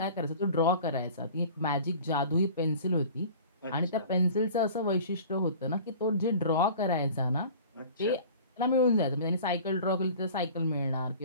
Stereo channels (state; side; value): inverted; both; correlation -0.43